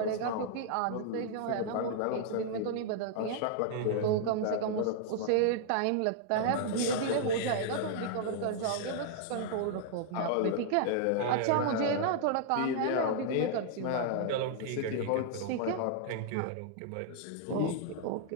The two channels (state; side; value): different; both; correlation -0.01